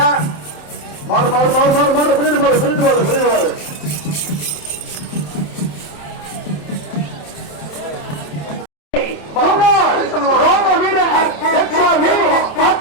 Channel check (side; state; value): right; late; 27 ms